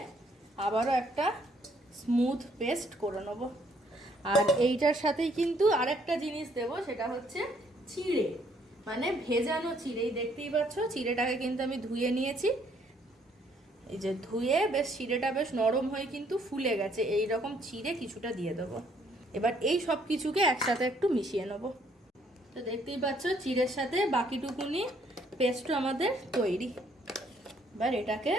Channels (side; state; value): both; normal; correlation 0.67